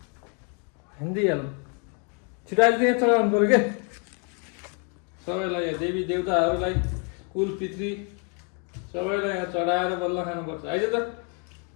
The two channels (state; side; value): quieter; right; 37.4 dB